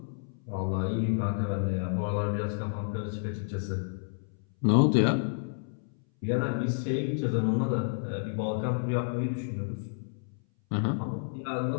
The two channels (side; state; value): right; silent; 58 dB below the other